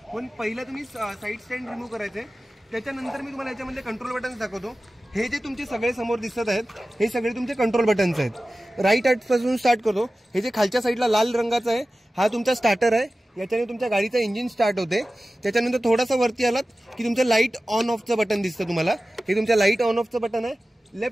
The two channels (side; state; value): both; normal; correlation 0.96